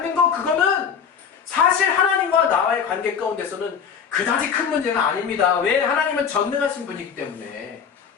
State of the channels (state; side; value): quieter; right; 7.0 dB